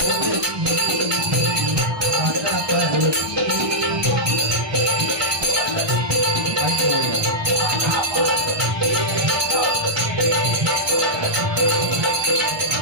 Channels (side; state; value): left; late; 1.2 ms